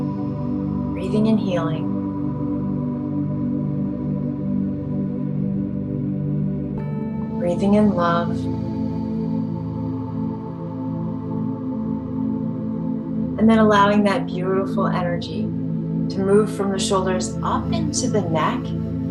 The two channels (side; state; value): both; identical; correlation 1.00